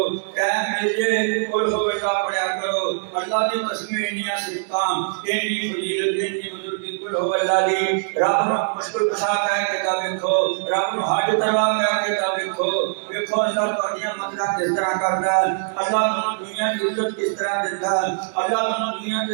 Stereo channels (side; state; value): left; silent; digital silence